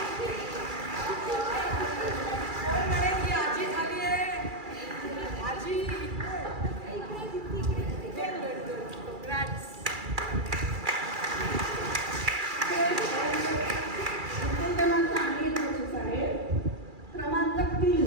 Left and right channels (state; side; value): late; left; 2.4 ms